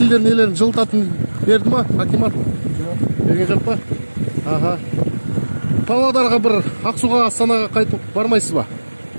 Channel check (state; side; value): inverted; both; correlation -1.00